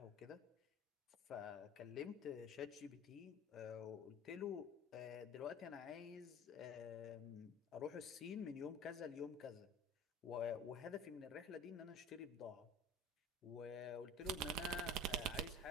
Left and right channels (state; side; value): normal; both; correlation 0.40